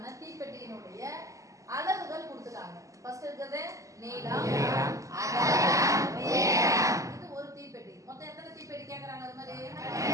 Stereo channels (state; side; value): late; left; 0.16 ms